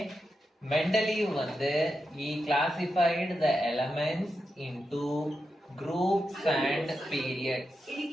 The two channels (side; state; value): both; normal; correlation 0.88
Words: Mendeleev வந்து he classified the elements into groups and periods.